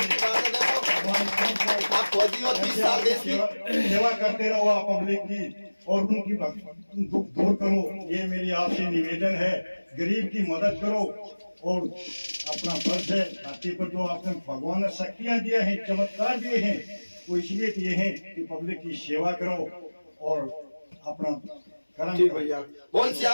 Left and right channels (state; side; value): inverted; both; correlation -1.00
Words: आप फौजी हो, 30 साल देश की सेवा करते रहो आप पब्लिक की, और उनकी दुख दूर करो। ये मेरी आपसे निवेदन है, गरीब की मदद करो। और अपना फर्ज है, धरती पर जो आपने भगवान ने शक्तियां दिया है, चमत्कार दिए हैं, वो इसलिए दिए हैं कि पब्लिक की सेवा करो और अपना कर्म। ठीक भैया, बोल